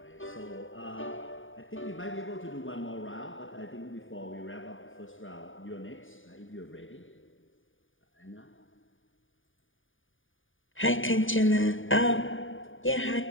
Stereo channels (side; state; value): right; late; 0.57 ms